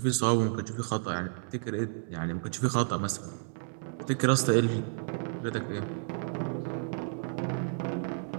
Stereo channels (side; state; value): left; silent; digital silence